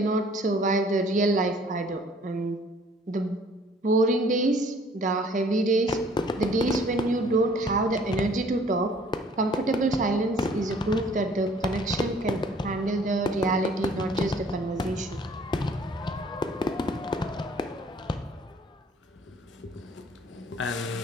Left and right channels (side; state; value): both; normal; correlation 0.56